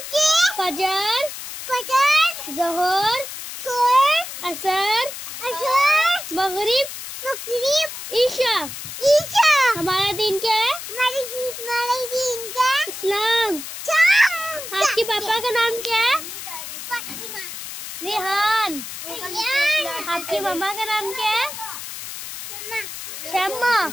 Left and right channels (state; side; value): noise; left; hiss, 9 dB below the sound